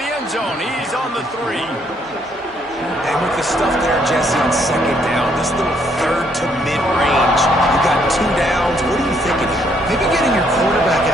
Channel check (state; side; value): normal; both; correlation 0.69